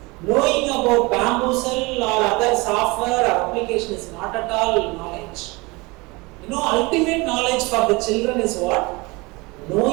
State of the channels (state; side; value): quieter; left; 24.9 dB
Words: Knowing about bamboozle or other software or application is not at all knowledge. You know, ultimate knowledge for the children is what?